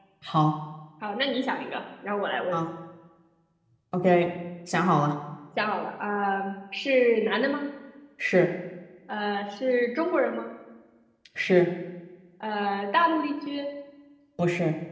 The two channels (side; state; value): both; identical; correlation 1.00